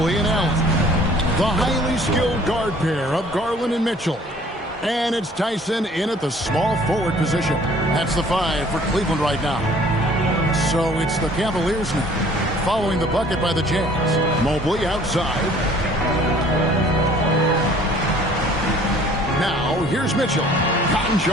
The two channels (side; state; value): both; normal; correlation 0.54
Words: and Allen. The highly skilled guard pair of Garland and Mitchell. And it's Tyson in at the small forward position. That's the 5 for Cleveland right now. So it's the Cavaliers now, following the bucket by the Jazz. Mobley outside. Now here's Mitchell.